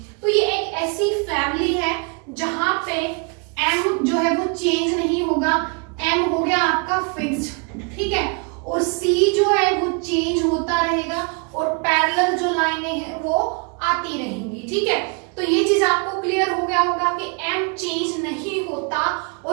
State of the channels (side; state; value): left; quieter; 34.9 dB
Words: तो ये एक ऐसी फैमिली है जहां पे m जो है वो चेंज नहीं होगा, m हो गया आती रहेंगी, ठीक है। तो ये चीज आपको क्लियर हो गया होगा कि m चेंज नहीं होता